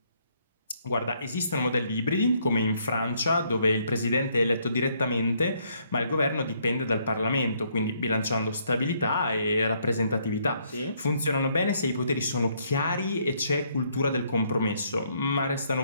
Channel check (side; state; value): both; inverted; correlation -0.70